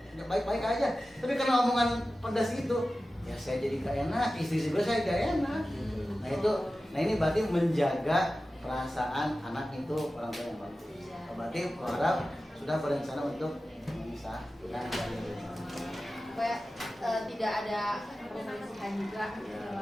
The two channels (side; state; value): both; normal; correlation 0.95